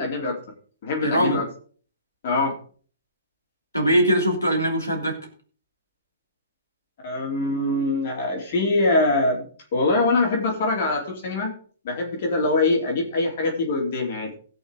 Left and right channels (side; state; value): both; inverted; correlation -0.47